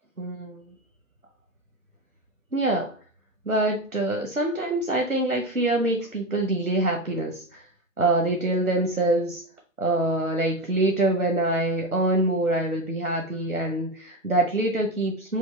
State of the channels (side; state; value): both; normal; correlation 0.18